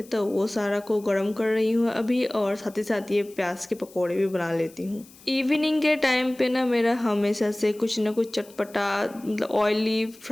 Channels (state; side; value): noise; left; hiss, 24 dB below the sound